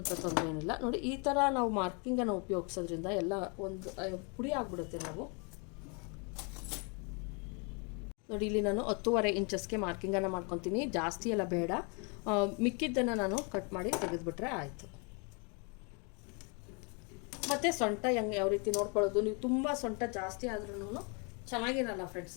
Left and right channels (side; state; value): right; quieter; 34.4 dB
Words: ತೊಂದರೆ ಏನಿಲ್ಲ. ನೋಡಿ ಈ ಥರ ನಾವು ಮಾರ್ಕಿಂಗನ್ನು ಉಪಯೋಗಿಸೋದ್ರಿಂದ ಎಲ್ಲ ಒಂದು ಪುಡಿ ಆಗಿಬಿಡುತ್ತೆ. ನಾವು ನೋಡಿ ಇಲ್ಲಿ ನಾನು 10.5 ಇಂಚಸ್ಗೆ ಮಾರ್ಕಿಂಗನ್ನು ಮಾಡ್ಕೊತೀನಿ, ಜಾಸ್ತಿ ಎಲ್ಲ ಬೇಡ. ಮಿಕ್ಕಿದ್ದನ್ನು ನಾನು ಕಟ್ ಮಾಡಿ ತೆಗೆದುಬಿಟ್ರೆ ಆಯಿತು. ಮತ್ತು ಸೊಂಟ ಯಾವ ರೀತಿ ನೋಡ್ಕೊಳ್ಳೋದು, ನೀವು ತುಂಬ ಸೊಂಟ ಜಾಸ್ತಿ ಆದ್ರೂ ಚೆನ್ನಾಗಿರಲ್ಲ ಫ್ರೆಂಡ್ಸ್.